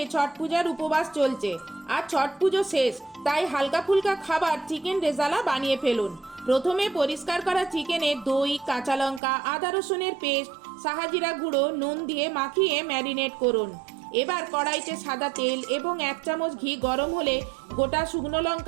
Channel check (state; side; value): drops out; left; at 9.2 s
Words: ছট পূজার উপবাস চলছে। আর ছট পুজো শেষ, তাই হালকা ফুলকা খাবার চিকেন রেজালা বানিয়ে ফেলুন। প্রথমে পরিষ্কার করা চিকেনে দই, কাঁচা লঙ্কা, আদা রসুনের পেস্ট, সাহাজিরা গুঁড়ো, নুন দিয়ে মাখিয়ে ম্যারিনেট করুন। এবার কড়াইতে সাদা তেল এবং 1 চামচ ঘি গরম হলে গোটা শুকনো